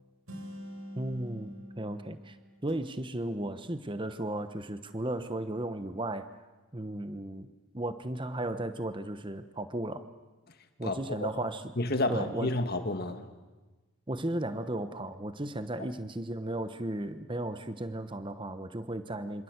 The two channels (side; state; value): both; normal; correlation 0.53